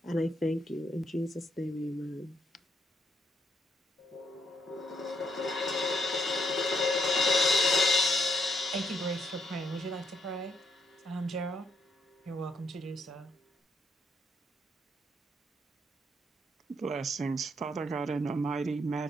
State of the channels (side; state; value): both; normal; correlation 0.75